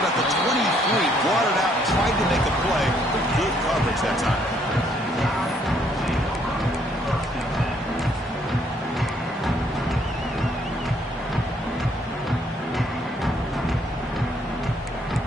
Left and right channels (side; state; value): both; normal; correlation 0.67